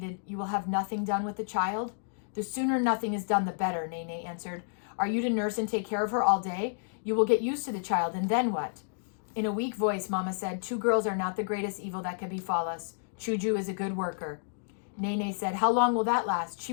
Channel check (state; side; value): silent; right; digital silence